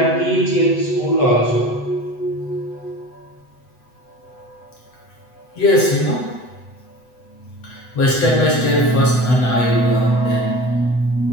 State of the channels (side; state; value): right; late; 8.0 ms